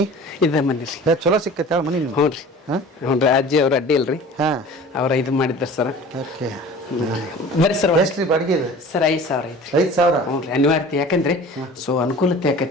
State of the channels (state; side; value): normal; both; correlation 0.42